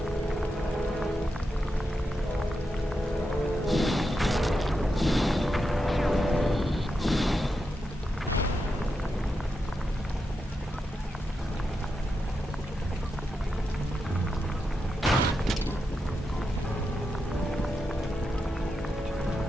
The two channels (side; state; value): both; normal; correlation 0.87